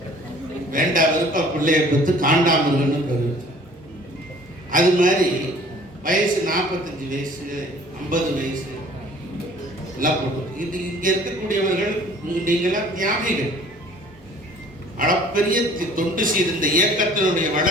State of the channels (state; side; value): normal; both; correlation 0.51